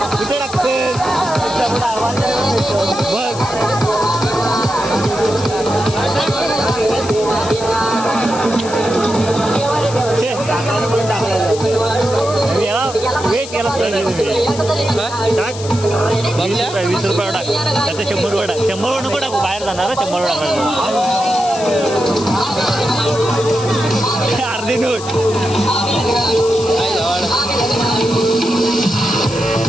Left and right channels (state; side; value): noise; left; hiss, 12 dB below the sound